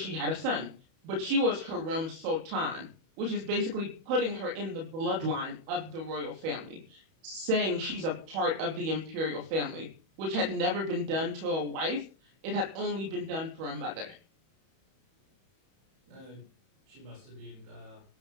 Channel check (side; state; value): left; late; 31 ms